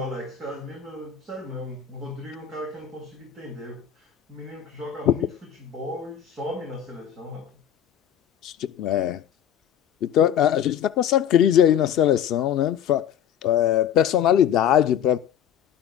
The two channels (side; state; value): right; quieter; 9.5 dB